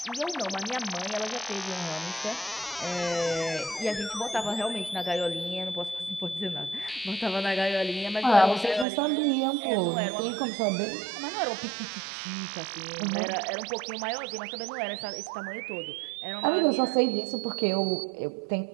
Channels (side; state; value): left; drops out; at 8.8 s